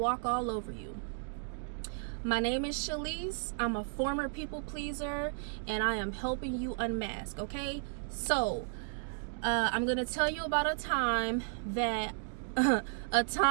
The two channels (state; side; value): silent; left; digital silence